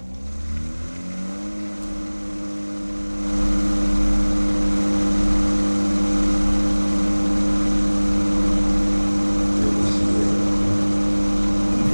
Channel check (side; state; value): both; inverted; correlation -1.00